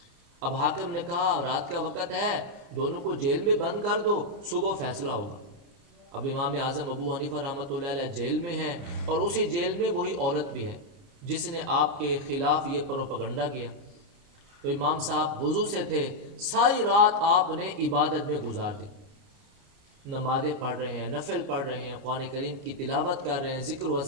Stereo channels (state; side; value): late; left; 29 ms